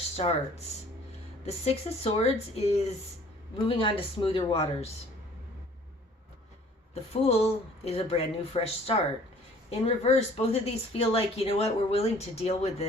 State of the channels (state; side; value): normal; both; correlation 0.54